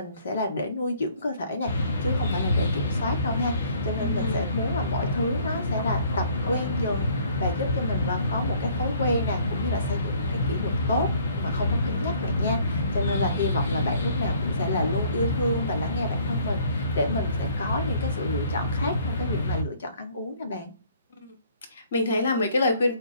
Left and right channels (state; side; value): inverted; both; correlation -0.59